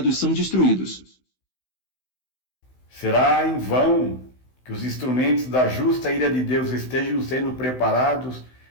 são destruídos. Será em vão que os instrumentos da justa ira de Deus estejam sendo preparados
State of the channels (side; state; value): right; late; 16 ms